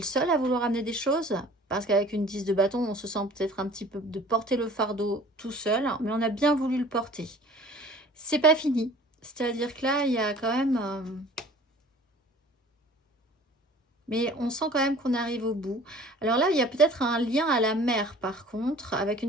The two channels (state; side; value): normal; both; correlation 0.48